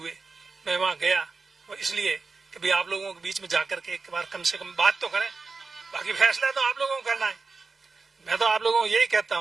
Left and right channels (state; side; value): quieter; left; 4.3 dB